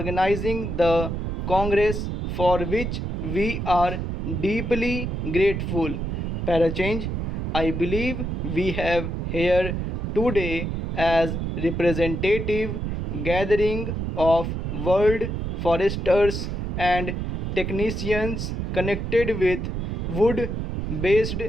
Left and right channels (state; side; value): noise; right; rumble, 2 dB below the sound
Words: the Congress, for which we are deeply grateful. Parachange, I believe we have here today as representative gathering of world foresters and technicians connected with wood based